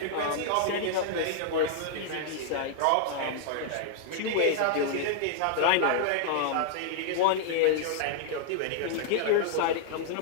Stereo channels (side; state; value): both; different; correlation -0.01